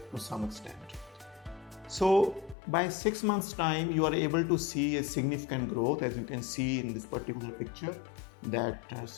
to some extent. So by 6 months time, you are able to see a significant growth. As you can see in this particular picture, that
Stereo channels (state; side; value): drops out; right; at 2.6 s